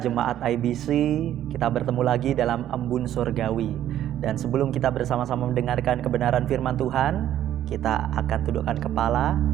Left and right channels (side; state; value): left; quieter; 11.7 dB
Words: IBC, kita bertemu lagi dalam Embun Surgawi. Dan sebelum kita bersama-sama mendengarkan kebenaran firman Tuhan, kita akan tundukkan kepala,